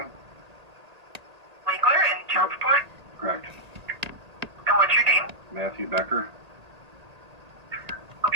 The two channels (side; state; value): left; late; 1.8 ms